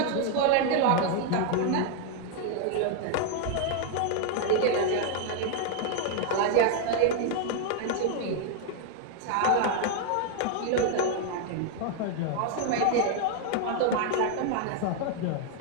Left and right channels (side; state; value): both; different; correlation 0.00